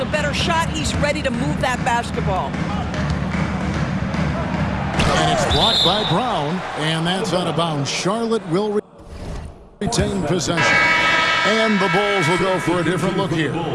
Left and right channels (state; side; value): identical; both; correlation 1.00